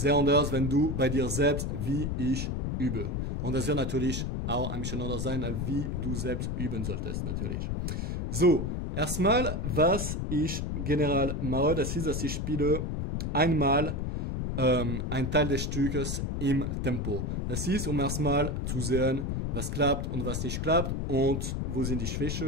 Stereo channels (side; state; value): left; noise; rumble, 2 dB below the sound